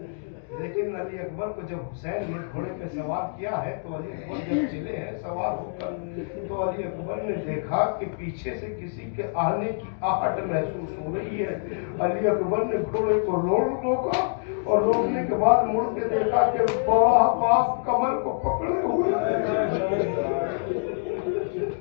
लेकिन अली अकबर को जब हुसैन ने घोड़े पे सवार किया है तो अली अकबर जब चले हैं सवार होकर, तो अली अकबर ने देखा कि पीछे से किसी के आने की आहट महसूस हो रही है। अली अकबर ने घोड़े को रोका और रोकने के बाद मुड़ के देखा कि बड़ा बाप कमर को पकड़े हुए।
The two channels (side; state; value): right; silent; digital silence